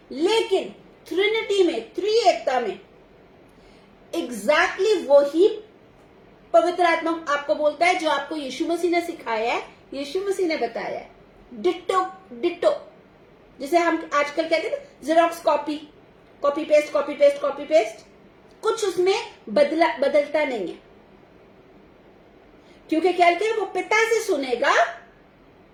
लेकिन ट्रिनिटी में, त्रिएकता में एग्जैक्टली वही पवित्र आत्मा आपको बोलता है जो आपको यीशु मसीह ने सिखाया है, यीशु मसीह ने बताया है। डिट्टो डिट्टो, जिसे हम आजकल कहते हैं xerox copy, copy paste, copy paste, copy paste, कुछ उसमें बदलता नहीं है, क्योंकि क्या कहते हैं, वो पिता से सुनेगा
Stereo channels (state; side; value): identical; both; correlation 1.00